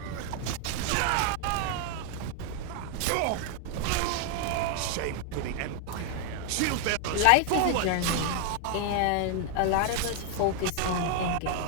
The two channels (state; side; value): different; both; correlation 0.00